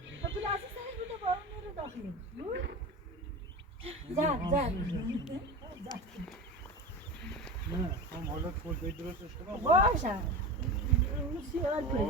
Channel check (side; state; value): both; normal; correlation 0.28